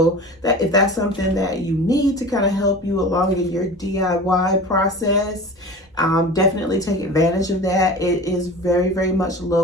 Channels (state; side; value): normal; both; correlation 0.36